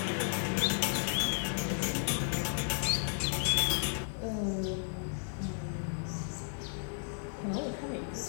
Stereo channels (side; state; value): right; silent; digital silence